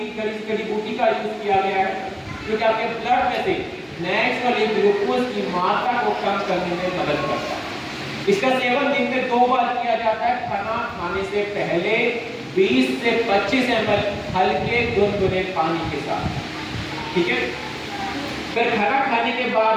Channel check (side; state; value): both; identical; correlation 1.00